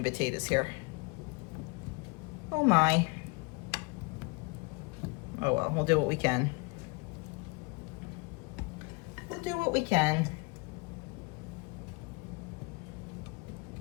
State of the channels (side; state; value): right; quieter; 27.6 dB